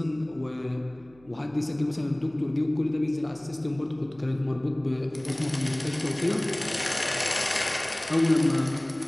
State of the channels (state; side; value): noise; right; hum, 27 dB below the sound